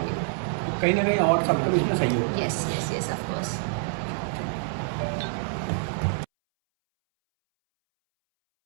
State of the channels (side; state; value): left; silent; 61 dB below the other